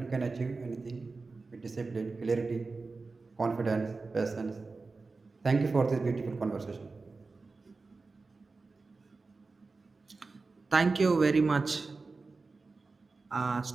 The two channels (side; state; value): left; quieter; 3.9 dB